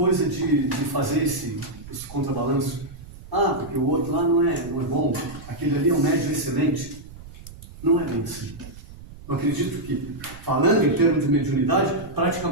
de fazer esse contrabalanço. Ah, porque o outro lá não é bom, aquele ali é um médium excelente. Não é bem assim. Eu acredito que, falando em termos de mediunidade,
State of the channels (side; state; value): right; noise; rumble, 17 dB below the sound